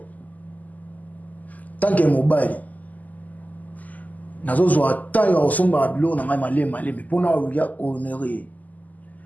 Tant que mobile, nazo zo tant ya osomba bilo na malé mais pour na honorer.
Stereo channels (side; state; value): right; late; 0.079 ms